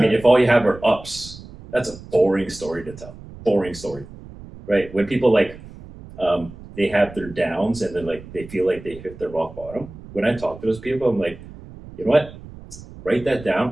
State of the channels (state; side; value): noise; right; rumble, 17 dB below the sound